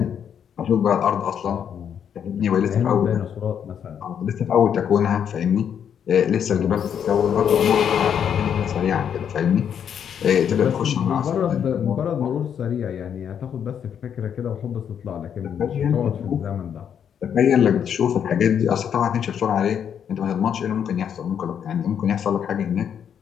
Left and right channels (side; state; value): right; quieter; 8.4 dB